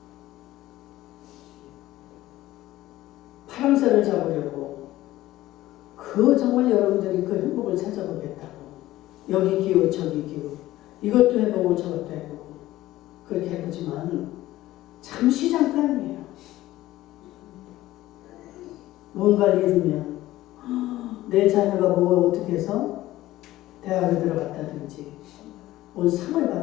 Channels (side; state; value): right; quieter; 15.9 dB